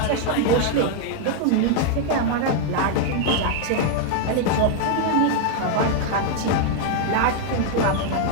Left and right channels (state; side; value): different; both; correlation 0.00